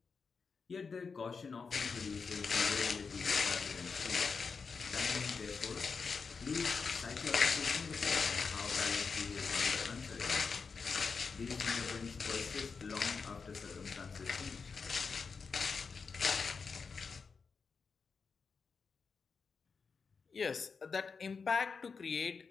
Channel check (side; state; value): right; quieter; 5.2 dB